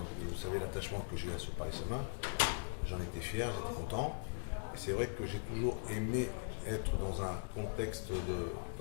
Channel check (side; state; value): right; silent; digital silence